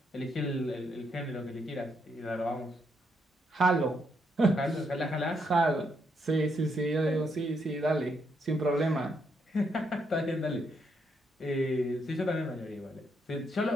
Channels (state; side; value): normal; both; correlation 0.77